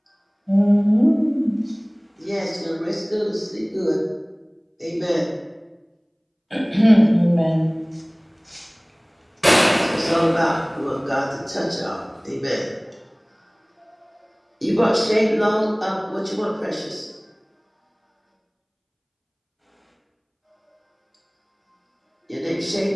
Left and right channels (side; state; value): both; identical; correlation 1.00